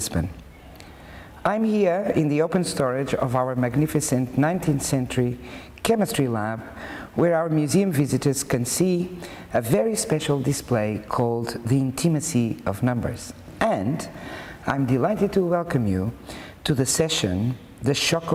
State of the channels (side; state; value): both; identical; correlation 1.00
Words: I'm here in the open storage of our magnificent 19th century chemistry lab, where our museum visitors can see a very special display called The Intimacy of Numbers. And I'm delighted to welcome you to the session, The Shock